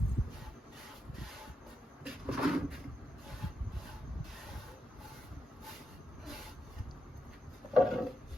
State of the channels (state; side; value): normal; both; correlation 0.85